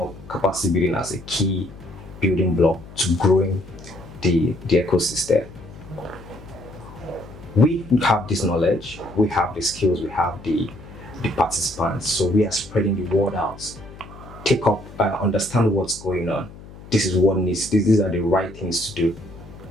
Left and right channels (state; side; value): noise; left; hum, 17 dB below the sound